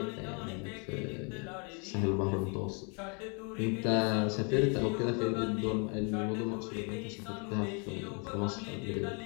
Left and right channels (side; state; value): right; quieter; 35.8 dB